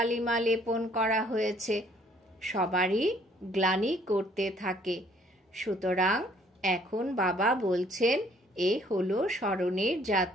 লেপন করা হয়েছে। সবারই গ্লানি করতে থাকে। সুতরাং এখন বাবা বলছেন, এ হলো স্মরণের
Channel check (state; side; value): normal; both; correlation 0.62